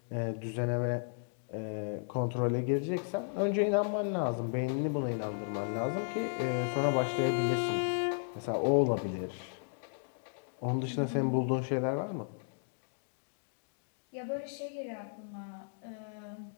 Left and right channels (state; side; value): silent; right; digital silence